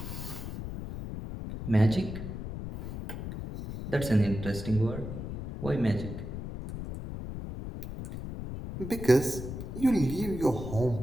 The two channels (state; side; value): noise; left; rumble, 7 dB below the sound